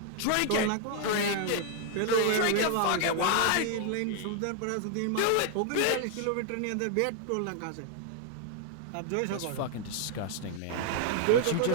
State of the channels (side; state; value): both; different; correlation 0.00